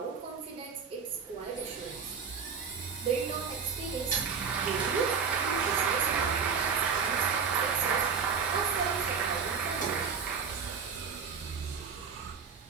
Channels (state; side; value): quieter; left; 6.0 dB